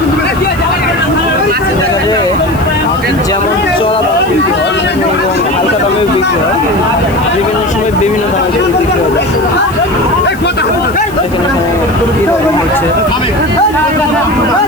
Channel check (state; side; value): noise; left; hiss, 20 dB below the sound